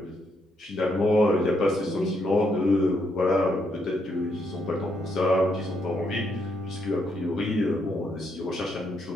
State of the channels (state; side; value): normal; both; correlation 0.76